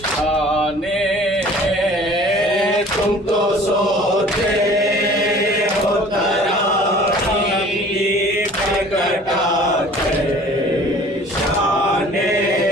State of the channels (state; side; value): normal; both; correlation 0.48